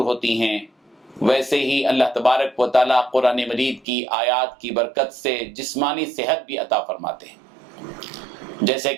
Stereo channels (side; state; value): left; drops out; at 3.9 s